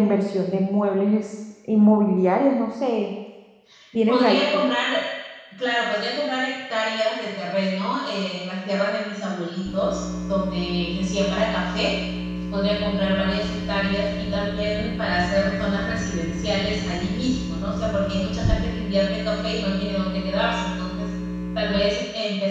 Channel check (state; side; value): identical; both; correlation 1.00